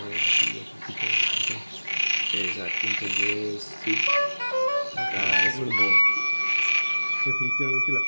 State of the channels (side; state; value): both; inverted; correlation -1.00